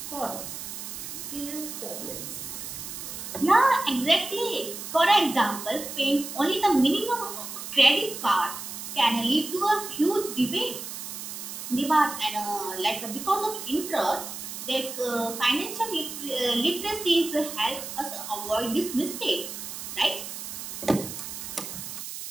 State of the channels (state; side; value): noise; right; hiss, 8 dB below the sound